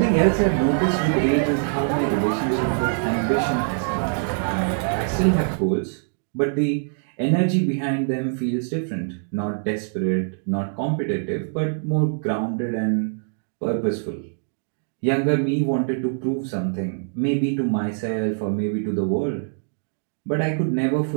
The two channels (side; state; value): left; silent; digital silence